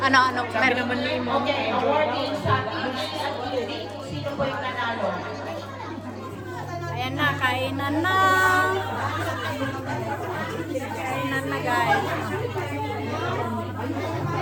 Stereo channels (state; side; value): identical; both; correlation 1.00